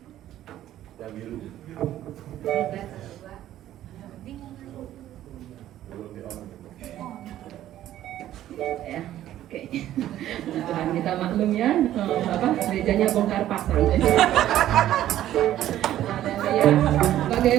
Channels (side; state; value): left; quieter; 12.8 dB